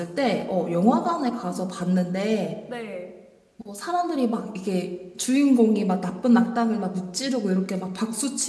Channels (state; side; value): identical; both; correlation 1.00